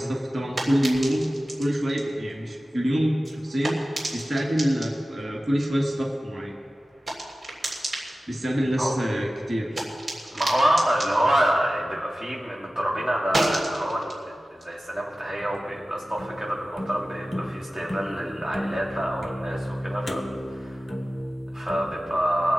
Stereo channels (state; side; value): normal; both; correlation 0.96